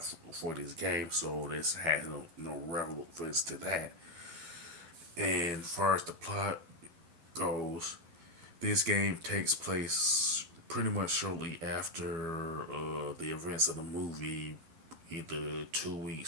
for this game, so this has no relevance to that. And as far as the plot goes, this game takes place pretty much shortly after the events of the movie, either 2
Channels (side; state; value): left; late; 11 ms